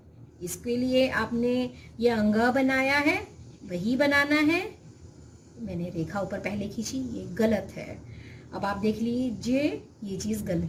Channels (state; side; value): identical; both; correlation 1.00